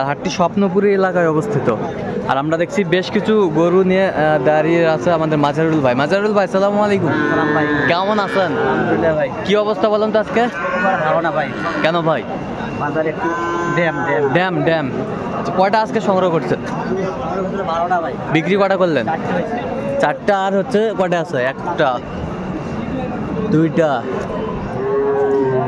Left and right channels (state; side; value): identical; both; correlation 1.00